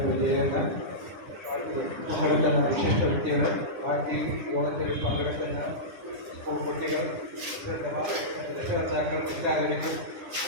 വിജയൻ, പങ്കെടുക്കുന്ന വിശിഷ്ട വ്യക്തികൾ, ബാക്കി യോഗത്തിൽ പങ്കെടുക്കുന്ന സ്കൂൾ കുട്ടികൾ, രക്ഷകർത്താക്കൾ, എല്ലാവർക്കും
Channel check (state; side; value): late; left; 9.8 ms